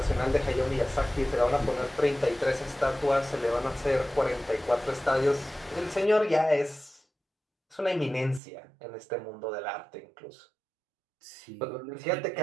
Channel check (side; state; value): left; drops out; at 8.4 s